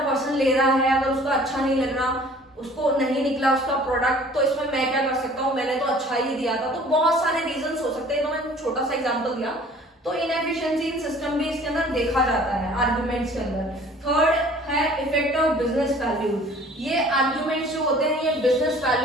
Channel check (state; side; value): normal; both; correlation 0.51